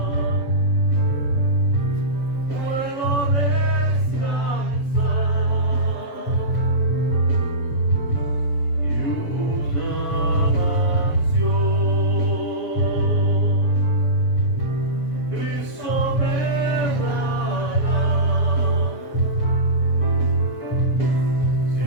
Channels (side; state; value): right; late; 7.5 ms